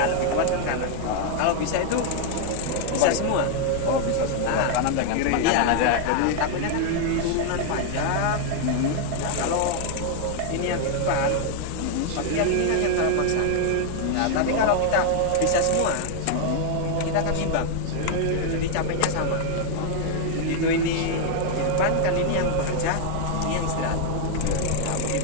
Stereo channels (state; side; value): different; both; correlation 0.00